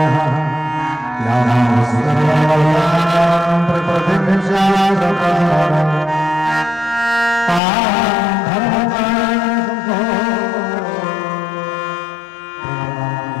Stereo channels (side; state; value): right; drops out; at 7.6 s